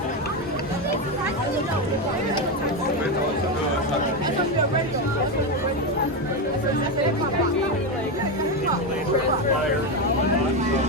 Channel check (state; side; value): normal; both; correlation 0.11